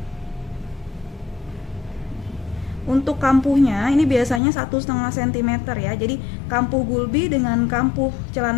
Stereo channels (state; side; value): drops out; right; at 4.4 s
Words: Untuk kampuhnya ini biasanya 1,5 cm ya. Jadi kampuh gulbi dengan kampuh